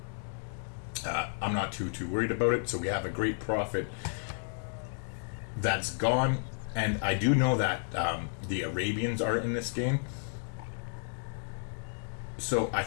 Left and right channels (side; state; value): right; silent; digital silence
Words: I'm not too worried about it. So we have a great prophet that's gone, and I do know that the Arabians are in this game. So I